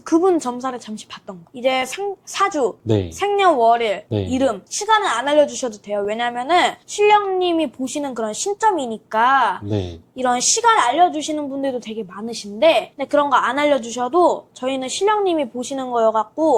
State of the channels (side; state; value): both; identical; correlation 1.00